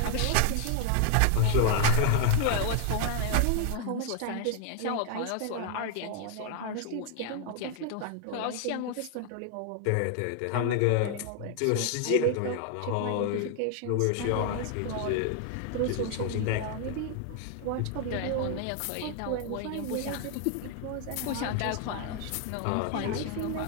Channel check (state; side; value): different; both; correlation 0.00